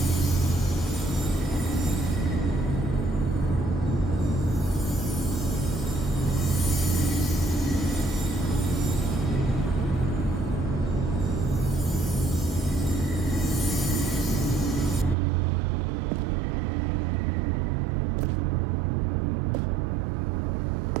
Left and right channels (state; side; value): drops out; left; at 15.2 s